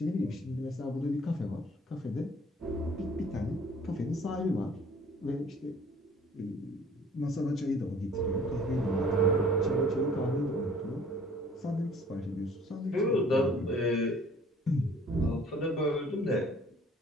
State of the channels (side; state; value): both; normal; correlation 0.53